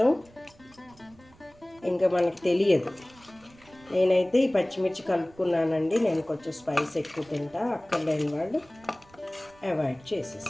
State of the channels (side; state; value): right; noise; rumble, 26 dB below the sound